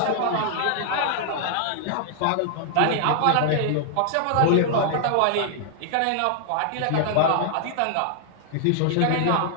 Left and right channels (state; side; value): different; both; correlation -0.01